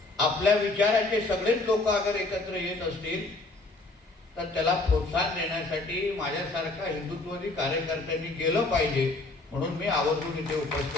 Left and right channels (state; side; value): quieter; right; 3.1 dB